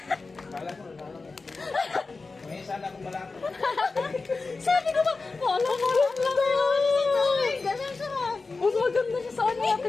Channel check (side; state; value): right; quieter; 3.9 dB